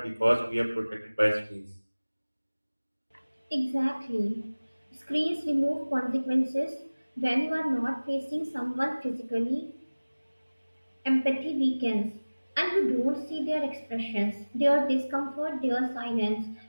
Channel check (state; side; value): inverted; both; correlation -1.00